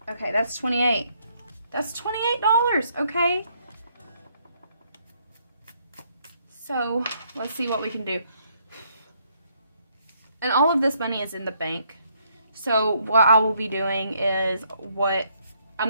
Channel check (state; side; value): inverted; both; correlation -0.70